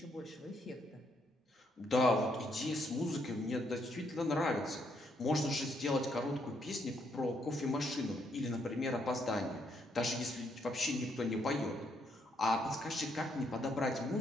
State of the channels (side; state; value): both; normal; correlation 0.74